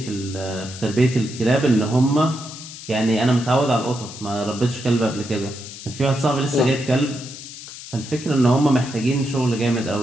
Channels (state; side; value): noise; left; hiss, 13 dB below the sound